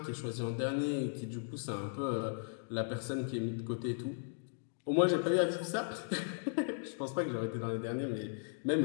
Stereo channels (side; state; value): right; silent; digital silence